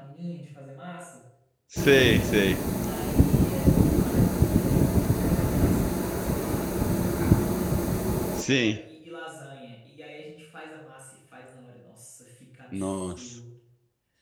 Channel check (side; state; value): both; identical; correlation 1.00